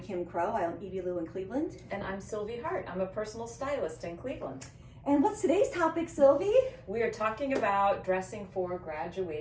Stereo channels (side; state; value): both; identical; correlation 1.00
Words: Crow. I own Evie Lou in Cleveland. And I'm Sylvie Hart. I'm a personal stylist in Cleveland. And what's today's topic, Sylvie? We are talking about dressing for